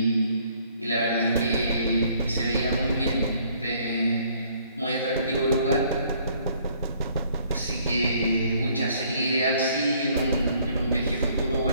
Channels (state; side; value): inverted; both; correlation -0.62